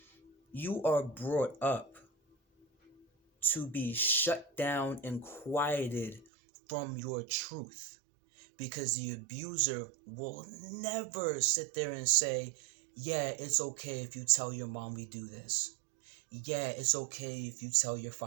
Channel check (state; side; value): drops out; left; at 6.2 s